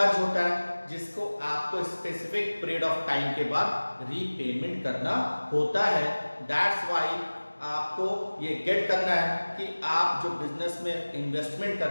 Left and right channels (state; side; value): inverted; both; correlation -1.00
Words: होता है, जिसको आपको स्पेसिफिक पीरियड ऑफ टाइम के बाद रीपेमेंट करना होता है। दैट्स व्हाई आपको ये गेट करना है कि आप जो बिजनेस में इन्वेस्टमेंट